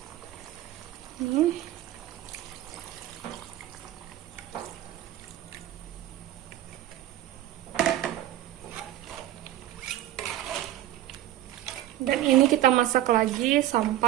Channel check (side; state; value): left; quieter; 13.6 dB